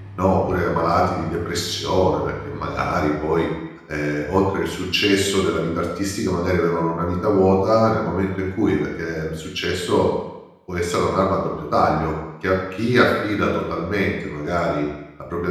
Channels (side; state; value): both; identical; correlation 1.00